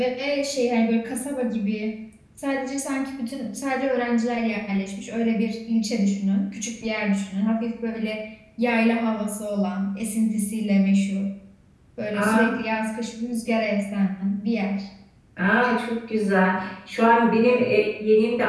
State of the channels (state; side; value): identical; both; correlation 1.00